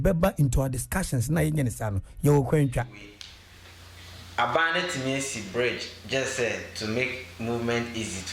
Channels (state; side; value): identical; both; correlation 1.00